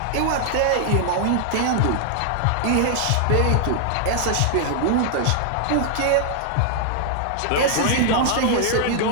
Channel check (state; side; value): different; both; correlation -0.01